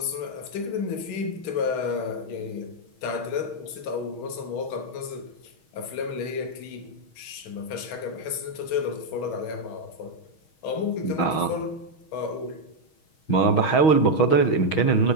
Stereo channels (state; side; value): late; right; 6.3 ms